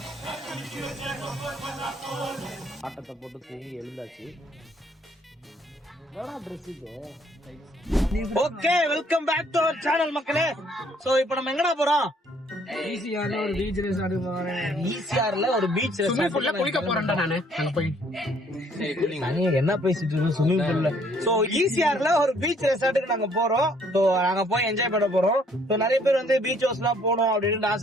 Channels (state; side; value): normal; both; correlation 0.63